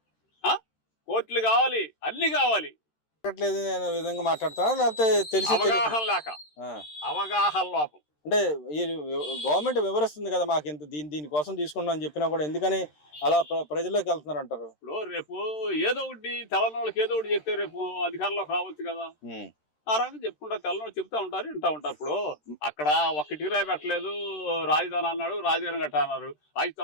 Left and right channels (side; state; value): right; late; 13 ms